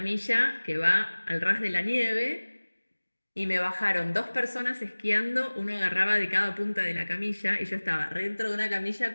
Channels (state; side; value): inverted; both; correlation -1.00